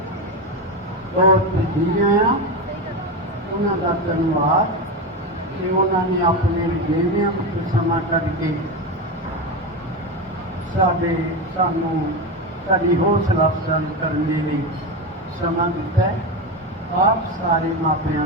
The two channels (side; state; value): both; normal; correlation 0.17